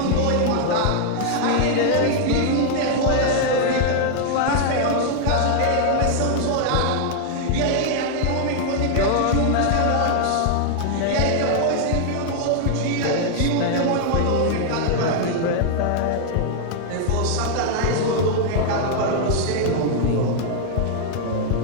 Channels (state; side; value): different; both; correlation 0.00